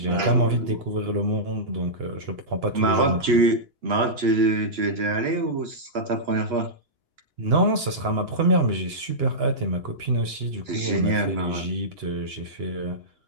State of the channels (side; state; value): left; late; 2.9 ms